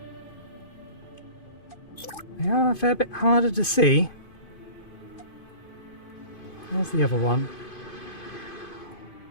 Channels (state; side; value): late; right; 2.5 ms